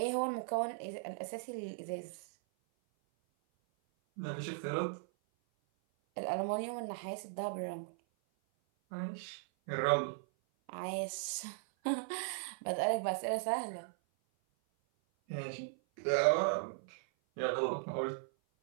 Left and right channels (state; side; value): silent; left; 53 dB below the other